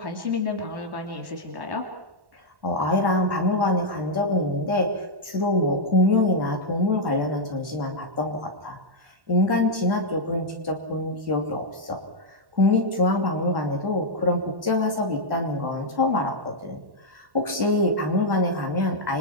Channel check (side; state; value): left; late; 1.1 ms